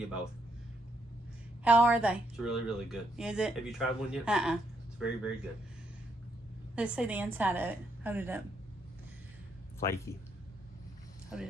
both. How are they? It's really, really good. Is it? Have you tried one yet? Uh-uh. It's very, very good. Let's see the inside of it. Hold it up. Flaky. Hold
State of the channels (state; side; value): normal; both; correlation 0.76